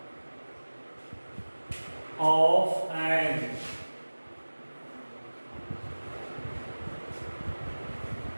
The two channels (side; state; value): both; inverted; correlation -1.00